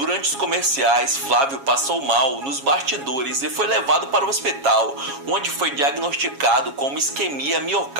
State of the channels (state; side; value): late; left; 7.3 ms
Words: os comerciais, Flávio passou mal nos bastidores e foi levado para o hospital, onde foi diagnosticado com uma isquemia